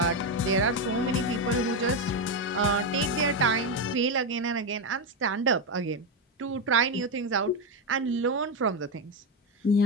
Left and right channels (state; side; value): normal; both; correlation 0.09